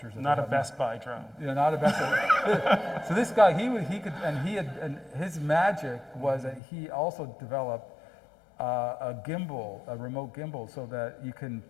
Not a Best Buy drone. Yeah, not a Best Buy. So this guy, and his magic was that he also developed a gimbal, a remote gimbal, so that you can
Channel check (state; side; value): drops out; right; at 6.6 s